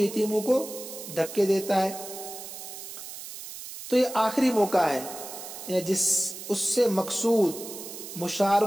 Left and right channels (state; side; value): noise; right; hiss, 11 dB below the sound